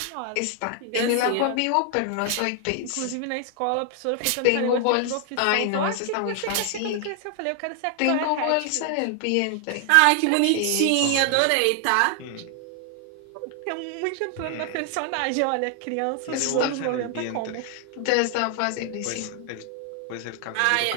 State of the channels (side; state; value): both; different; correlation 0.00